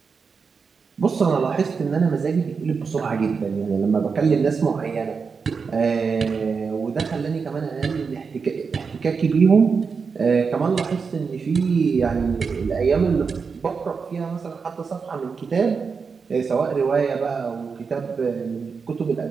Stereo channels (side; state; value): left; quieter; 5.4 dB